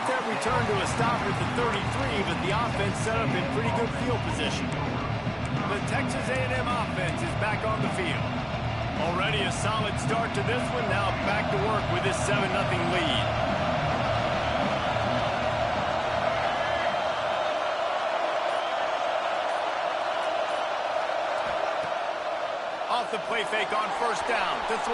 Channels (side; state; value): both; identical; correlation 1.00